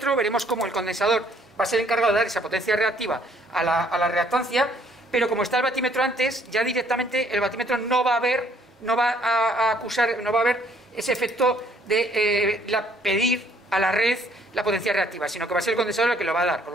veremos cómo el condensador va a ser encargado de dar esa potencia reactiva a la reactancia, pero como está el batímetro antes, ya directamente el batímetro no va a ver ese efecto de pedir a la red la potencia reactiva, sino que va a ser el condensador el que lo va a dar, con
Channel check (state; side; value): normal; both; correlation 0.62